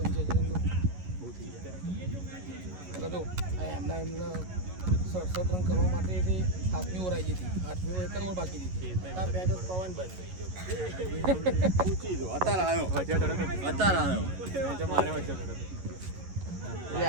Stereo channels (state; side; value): late; left; 11 ms